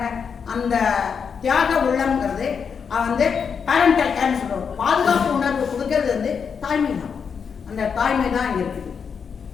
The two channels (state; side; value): quieter; right; 6.4 dB